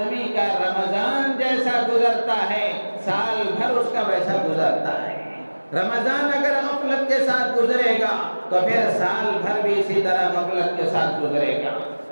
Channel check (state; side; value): inverted; both; correlation -1.00